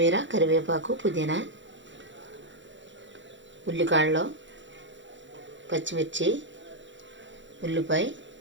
కరివేపాకు, పుదీనా, ఉల్లికాడలు, పచ్చిమిర్చి, ఉల్లిపాయ,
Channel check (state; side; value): late; left; 0.54 ms